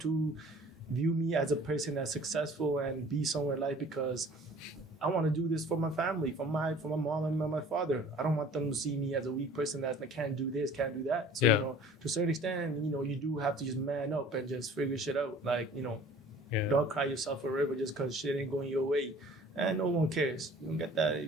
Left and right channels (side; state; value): both; normal; correlation 0.49